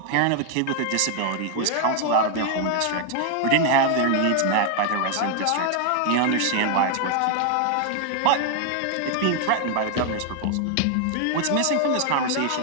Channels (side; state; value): both; different; correlation 0.00